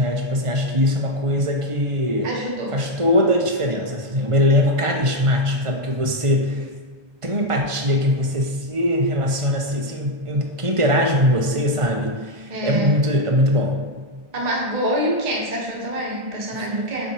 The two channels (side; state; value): left; late; 1.5 ms